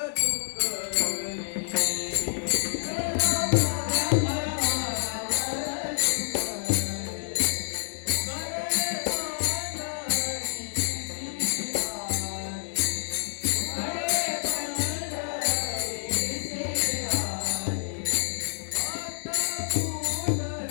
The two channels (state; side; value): silent; right; 59 dB below the other